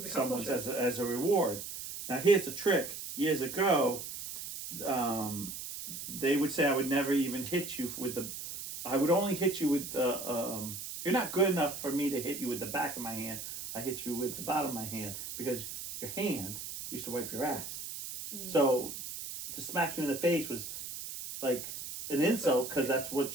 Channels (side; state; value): right; noise; hiss, 8 dB below the sound